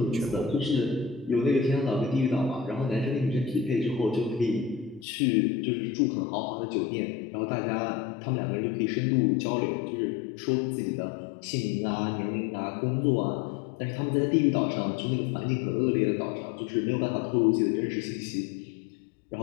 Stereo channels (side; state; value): right; drops out; at 5.1 s